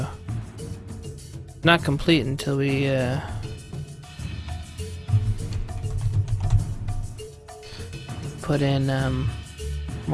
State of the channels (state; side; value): identical; both; correlation 1.00